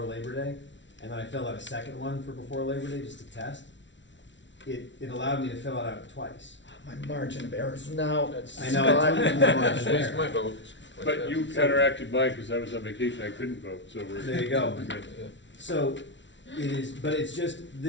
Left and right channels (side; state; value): right; late; 0.54 ms